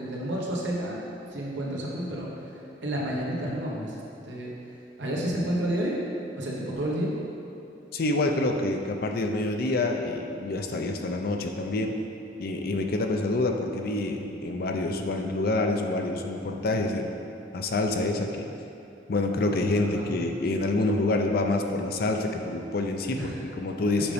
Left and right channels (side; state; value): both; normal; correlation 0.46